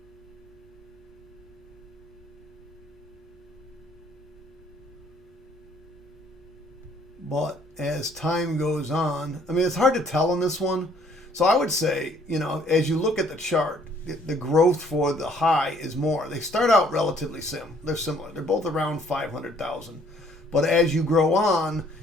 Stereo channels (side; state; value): right; noise; hum, 28 dB below the sound